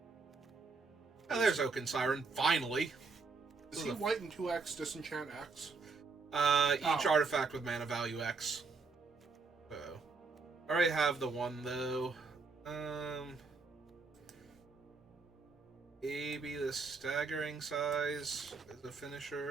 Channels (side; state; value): left; quieter; 4.4 dB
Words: Oh, there's Oaken Siren, finally! Is he white and 2x disenchant X? Each artifact with mana value X. So, I already have the 1 though. Maybe the Staggering Size as a